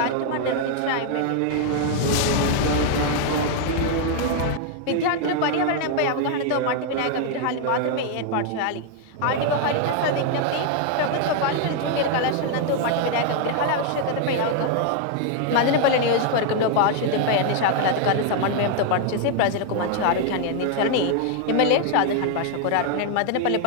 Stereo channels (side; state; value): both; different; correlation 0.00